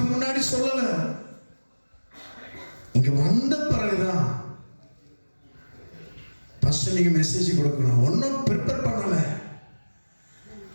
முன்னாடி சொல்லல. இங்க வந்த பிறகுதான் ஃபர்ஸ்ட் நீங்க மெசேஜ் கொடுக்கணும். ஒன்றும் ப்ரிப்பேர் பண்ணல.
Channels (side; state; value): both; inverted; correlation -1.00